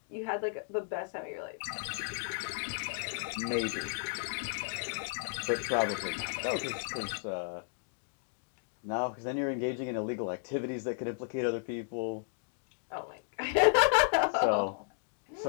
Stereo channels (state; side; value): silent; right; digital silence